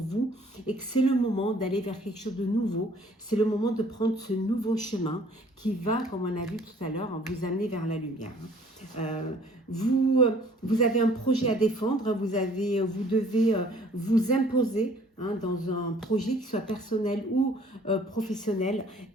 et que c'est le moment d'aller vers quelque chose de nouveau. C'est le moment de prendre ce nouveau chemin qui va, comme on a vu tout à l'heure, vous amener vers la lumière. Vous avez un projet à défendre, vous devez vous imposer dans un projet qui soit personnel ou professionnel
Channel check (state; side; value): normal; both; correlation 0.56